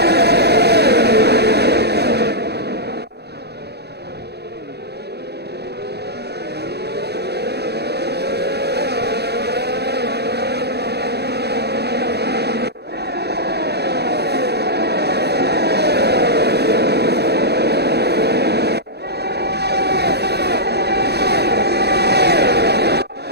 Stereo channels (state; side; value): late; left; 0.48 ms